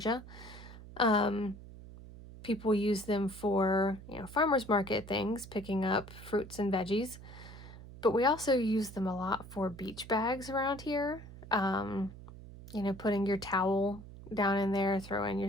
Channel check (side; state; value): right; noise; hum, 16 dB below the sound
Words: people use them for, farmers market things, picking up fruits and veggies. But we also use them a lot for beach bags around here. Putting your towel down in there, throw in